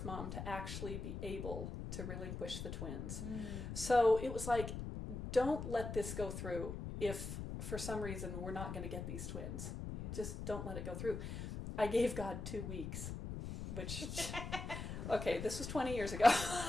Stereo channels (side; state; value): left; noise; rumble, 6 dB below the sound